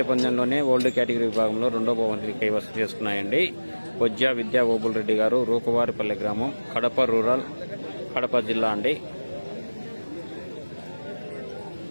పందెంలోనే ఓల్డ్ కేటగిరీ విభాగంలో రెండో బహుమతిని కైవసం చేసుకున్నాయండి. పొజ్జా విద్యా ఓబుల్ రెడ్డి గారు, రూపవారిపల్లె గ్రామం, కడప రూరల్, కడప జిల్లా అండి.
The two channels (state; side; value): inverted; both; correlation -1.00